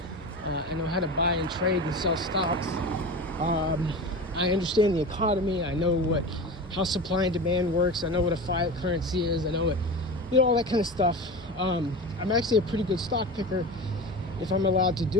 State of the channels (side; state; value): both; normal; correlation 0.29